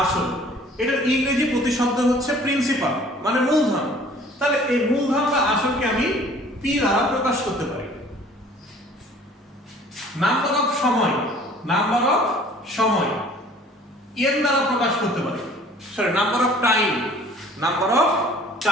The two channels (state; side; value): normal; both; correlation 0.52